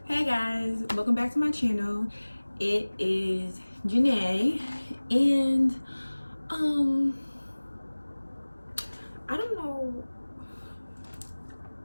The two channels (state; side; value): inverted; both; correlation -1.00